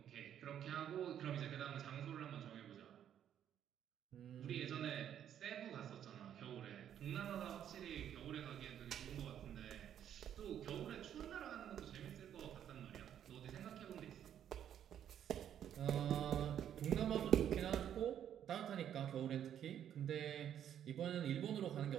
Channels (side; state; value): left; quieter; 9.9 dB